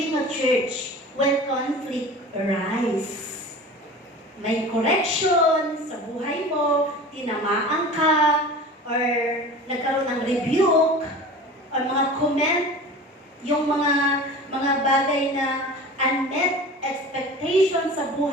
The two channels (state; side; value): normal; both; correlation 0.37